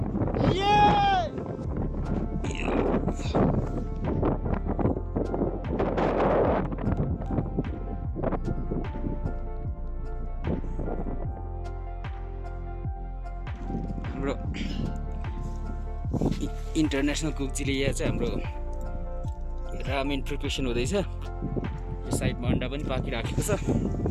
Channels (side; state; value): both; identical; correlation 1.00